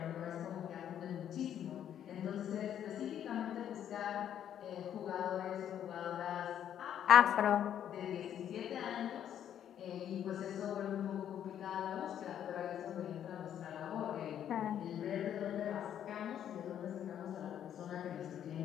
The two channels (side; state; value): right; quieter; 10.0 dB